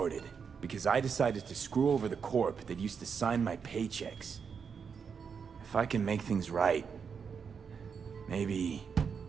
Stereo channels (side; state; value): left; quieter; 6.3 dB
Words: because I decided to screw over the corp that used to sign my paychecks. If I can make things right, maybe...